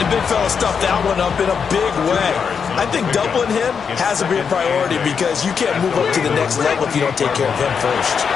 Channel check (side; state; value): right; quieter; 6.4 dB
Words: the big fella stuffed that one up in a big way. I think doubling him has to be a priority because you can't move up to the next level if you don't take care of him first.